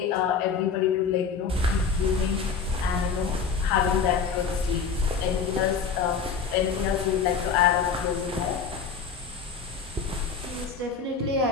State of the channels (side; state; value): right; quieter; 5.8 dB